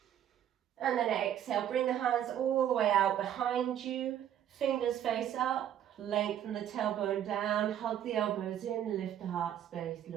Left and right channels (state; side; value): quieter; left; 10.5 dB